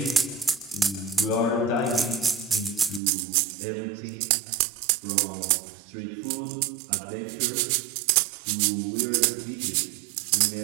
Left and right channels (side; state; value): left; drops out; at 3.0 s